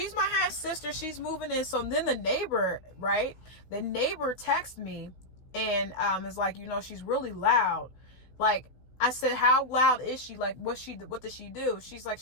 my half sister. She's moving in. So then the neighbor, right? The neighbor texted me and is like, she's really loud. Like, I said, how loud is she? Like, what does she do? She's like,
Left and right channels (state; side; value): late; right; 16 ms